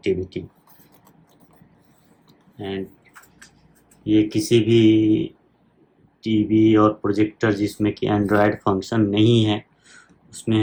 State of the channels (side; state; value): both; identical; correlation 1.00